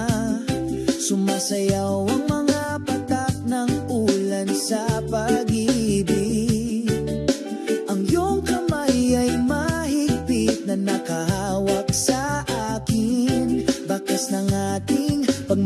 sumasayaw ang mga patak ng ulan sa pag-ibig. Ang iyong kamay ay mahigpit na nakahawak sa akin, bakas ng ating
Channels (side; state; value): both; identical; correlation 1.00